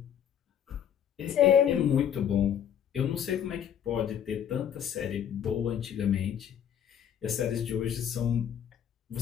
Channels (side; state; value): right; quieter; 9.2 dB